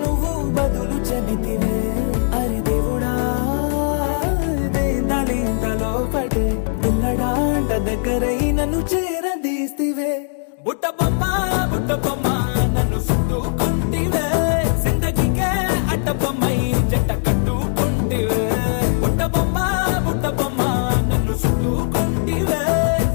నువ్వు బదులు చెబితివే అరే దేవుడా దాని తలో పటే పిల్లడాంట దగ్గరై నన్ను చేరదీస్తివే బుట్ట బొమ్మ నన్ను చుట్టుకుంటివే జిందగీకే అట్ట బొమ్మై జంట కట్టుకుంటివే బుట్ట బొమ్మ నన్ను చుట్టుకుంటివే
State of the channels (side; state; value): right; silent; digital silence